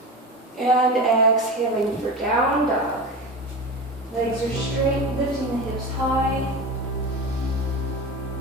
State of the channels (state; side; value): normal; both; correlation 0.26